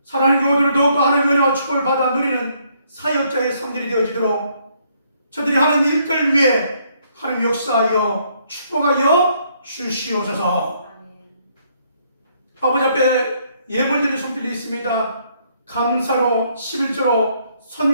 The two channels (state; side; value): inverted; both; correlation -0.69